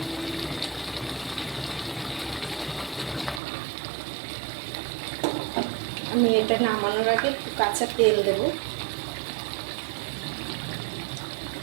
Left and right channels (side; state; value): left; drops out; at 3.4 s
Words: আমি এটা নামানোর আগে একটু কাঁচা তেল দেব।